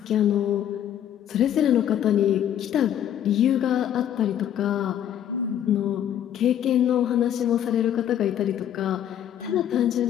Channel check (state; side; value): quieter; right; 10.3 dB